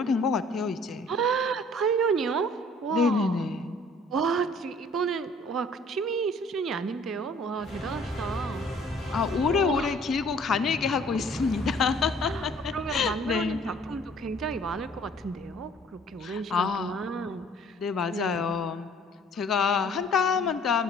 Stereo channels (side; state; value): both; normal; correlation 0.55